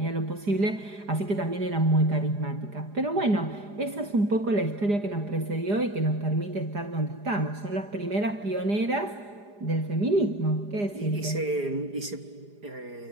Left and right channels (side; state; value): left; late; 4.9 ms